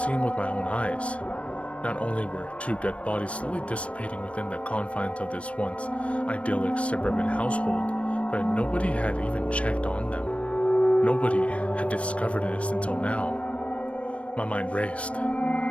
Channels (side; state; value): right; late; 0.062 ms